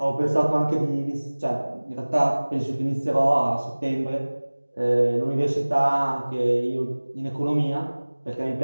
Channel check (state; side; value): inverted; both; correlation -1.00